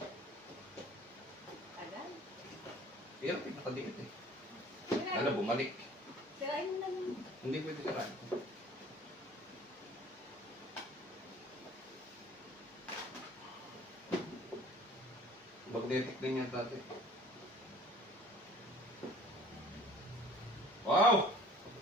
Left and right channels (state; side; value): normal; both; correlation 0.49